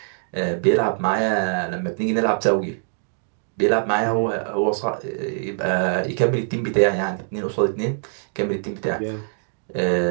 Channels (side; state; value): left; silent; digital silence